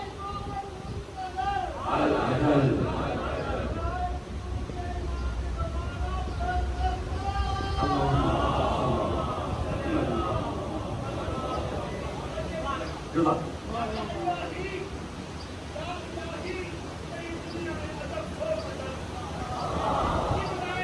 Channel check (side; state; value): both; identical; correlation 1.00